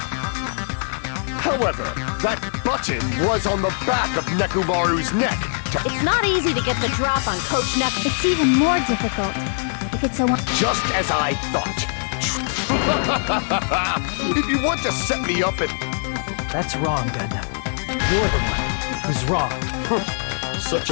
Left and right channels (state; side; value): silent; right; digital silence